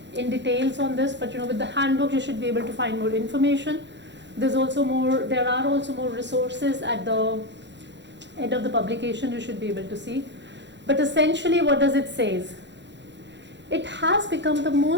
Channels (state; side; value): late; left; 0.52 ms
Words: in details on this, but with the handbook you should be able to find more information. There are also more resources at the end of the publication you should be able to see. But essentially, what does it say? It has become the